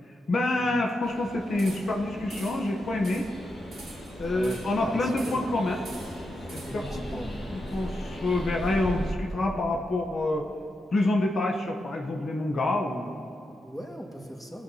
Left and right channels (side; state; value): both; normal; correlation 0.86